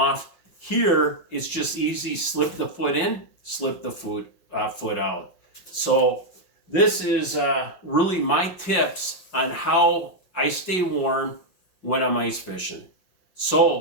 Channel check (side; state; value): right; late; 5.6 ms